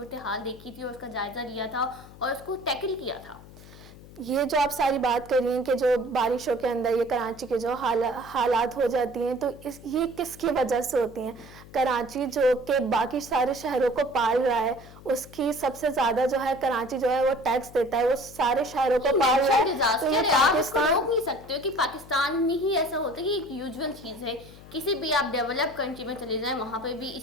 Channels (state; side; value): noise; left; hum, 19 dB below the sound